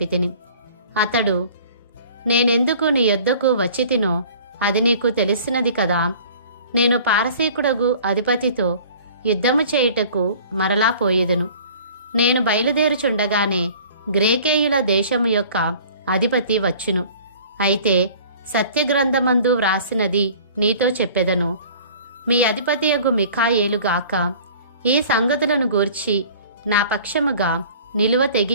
అతడు, నేనెందుకు నీ యొద్దకు వచ్చితినో అది నీకు తెలిసినది కదా. నేను పారసీకుడగు అధిపతితో యుద్ధము చేయుటకు మరలా పోయేదను. నేను బయలుదేరుచుండగానే గ్రేకేయుల దేశము యొక్క అధిపతి వచ్చును. అయితే సత్యగ్రంథమందు వ్రాసినది నీతో చెప్పెదను. మీ అధిపతియగు మిఖాయేలుగాక ఈ సంగతులను గూర్చి నా పక్షముగా నిలువ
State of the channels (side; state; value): both; inverted; correlation -0.47